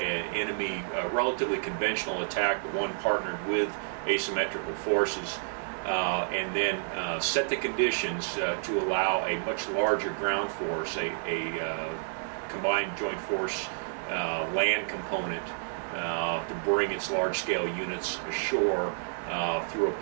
enemy relatively conventional attack, but one partnered with asymmetrical forces, and then set the conditions to allow a much larger ground force, a combined joint force land component to bring its large-scale units ashore through a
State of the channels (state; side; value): silent; left; digital silence